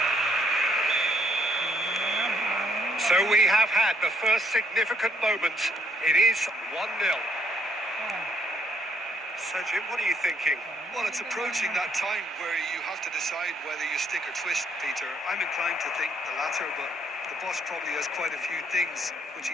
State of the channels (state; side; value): normal; both; correlation 0.70